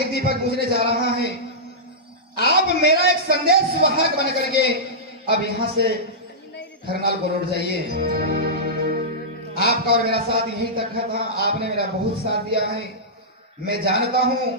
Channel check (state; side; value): normal; both; correlation -0.14